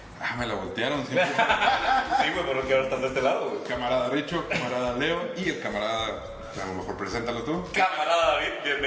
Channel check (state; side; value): identical; both; correlation 1.00